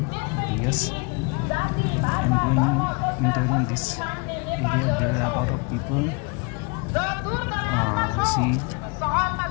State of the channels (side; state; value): right; quieter; 31.0 dB